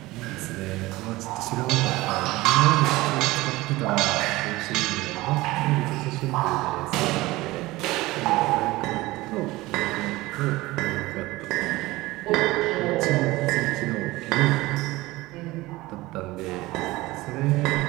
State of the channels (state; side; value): quieter; left; 19.5 dB